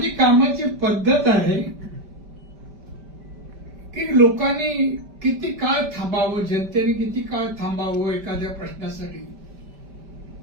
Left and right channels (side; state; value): left; late; 5.1 ms